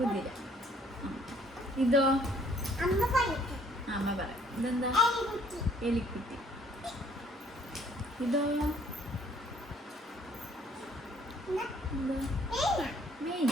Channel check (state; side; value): normal; both; correlation 0.61